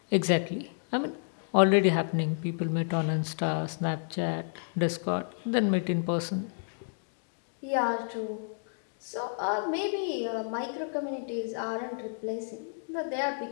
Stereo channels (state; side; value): silent; right; digital silence